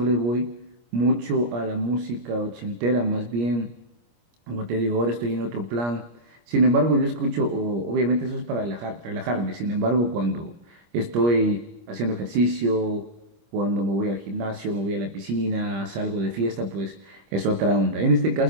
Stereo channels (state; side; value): late; left; 25 ms